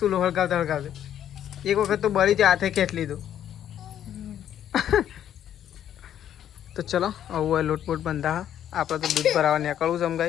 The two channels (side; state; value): right; quieter; 10.4 dB